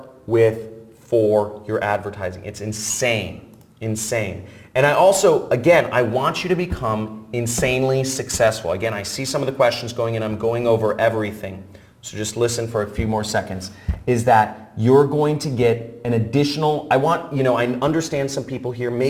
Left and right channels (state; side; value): identical; both; correlation 1.00